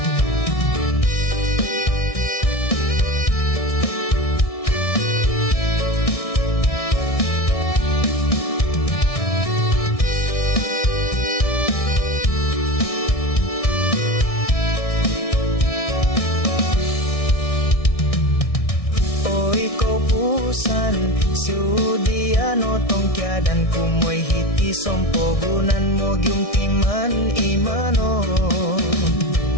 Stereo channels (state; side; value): late; right; 1.6 ms